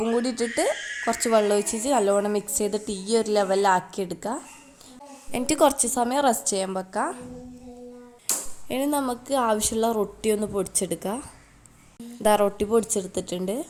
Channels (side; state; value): both; identical; correlation 1.00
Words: കൂടി ഇട്ടിട്ട് കുറച്ച് വെള്ളം ഒഴിച്ചിട്ട് നല്ലോണം മിക്സ് ചെയ്തിട്ട് ഈ ഒരു ലെവലിലാക്കിയെടുക്കുക. എന്നിട്ട് കുറച്ച് സമയം റെസ്റ്റ് ചെയ്യാൻ വെക്കാം. ഇനി നമുക്ക് ആവശ്യമുള്ള റൊട്ടി ഒന്ന് പൊടിച്ചെടുക്കുക. റൊട്ടി പൊടിച്ചെടുത്തിട്ടുണ്ട്.